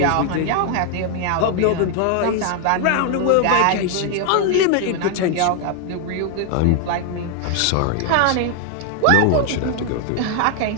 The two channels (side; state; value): both; different; correlation 0.00